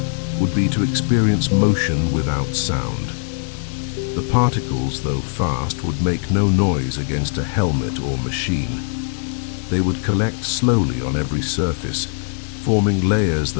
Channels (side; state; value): right; silent; digital silence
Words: would be to experience motion without sound. The particles, though fast, would make no noise against a helmet or machine. They would collect slowly on every surface, forming layers